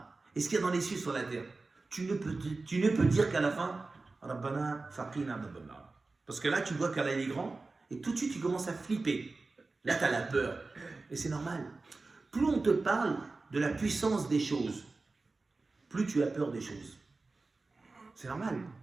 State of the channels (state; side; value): quieter; left; 3.6 dB